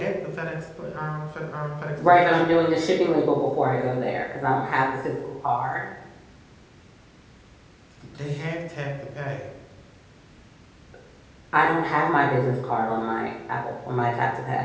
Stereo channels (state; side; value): identical; both; correlation 1.00